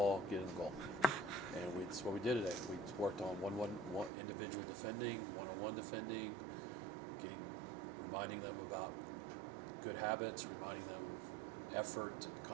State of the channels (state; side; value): drops out; left; at 4.1 s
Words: get in the goal. And that's what we did today. We worked on one individual defending, one-on-one defending, reminding them about good habits, reminding them of effort and